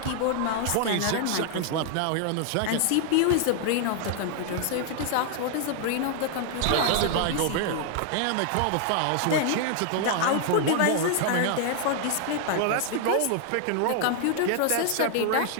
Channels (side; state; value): both; different; correlation 0.00